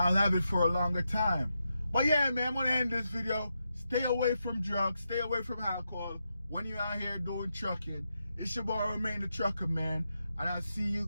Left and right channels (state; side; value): inverted; both; correlation -0.86